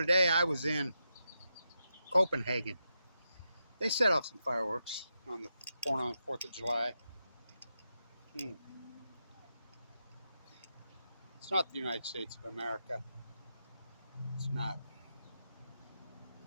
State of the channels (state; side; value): inverted; both; correlation -0.86